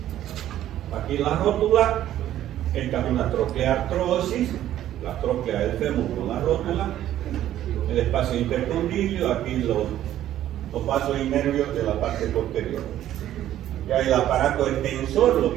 Aquí la rótula, esta es una trocleartrosis, la tróclea del fémur con la rótula, el espacio intercondilio, aquí los vasos y nervios de la parte posterior. Ya el aparato extensor,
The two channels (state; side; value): quieter; left; 12.4 dB